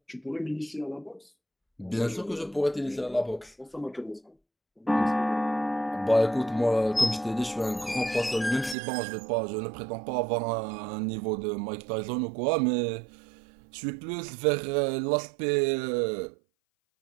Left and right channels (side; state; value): left; drops out; at 8.8 s